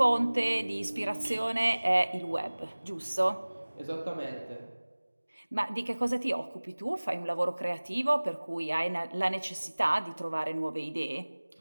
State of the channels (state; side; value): inverted; both; correlation -1.00